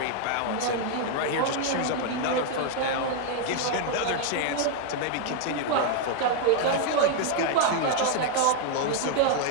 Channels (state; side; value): different; both; correlation 0.01